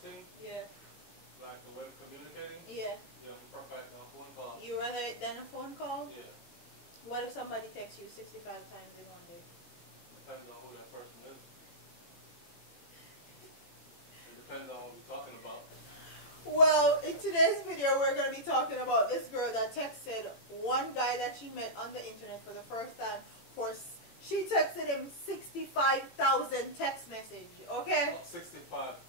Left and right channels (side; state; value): right; late; 18 ms